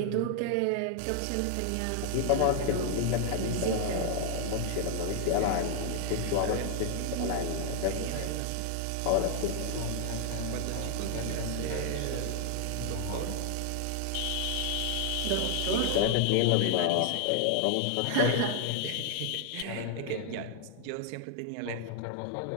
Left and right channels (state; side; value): different; both; correlation 0.00